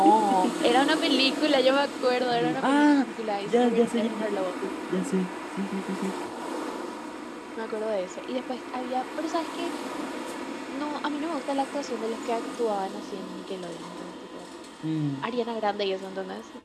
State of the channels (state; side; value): identical; both; correlation 1.00